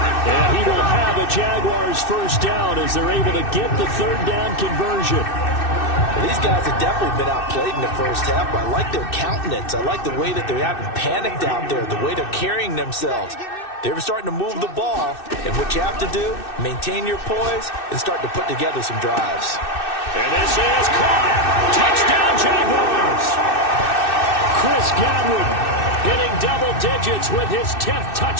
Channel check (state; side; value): late; right; 2.6 ms